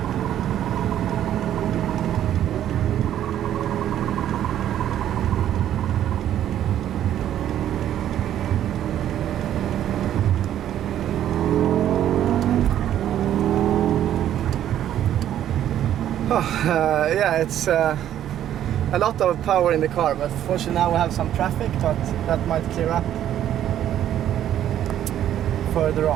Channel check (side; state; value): left; quieter; 11.2 dB